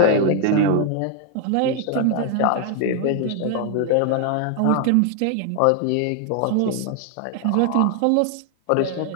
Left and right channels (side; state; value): both; different; correlation 0.00